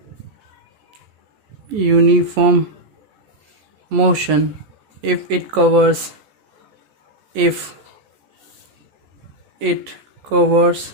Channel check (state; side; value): late; left; 14 ms